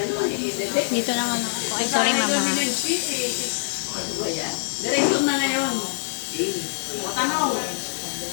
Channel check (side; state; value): right; silent; digital silence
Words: naman ako. Ay, sorry mama. Ano ba yan? Direksyon na ngayon. Tanong.